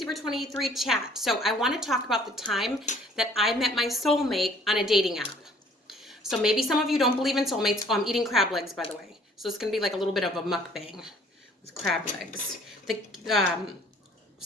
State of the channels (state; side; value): normal; both; correlation 0.57